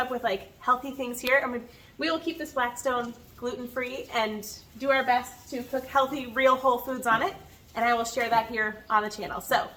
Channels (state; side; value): identical; both; correlation 1.00